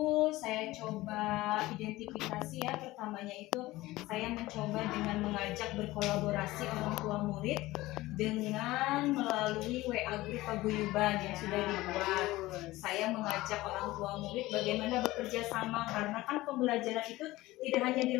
saya coba identifikasi ya. Pertamanya itu saya mencoba dengan mengajak berkolaborasi orang tua murid dengan melalui WA grup paguyuban yang sudah dibuat. Saya mengajak orang tua murid bagaimana bekerja sama, karena kan pembelajaran itu tidak hanya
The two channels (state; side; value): quieter; right; 18.3 dB